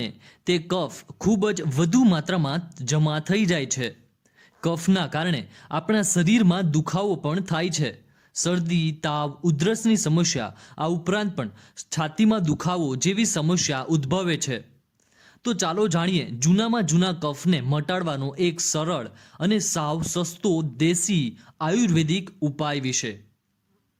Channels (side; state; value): both; identical; correlation 1.00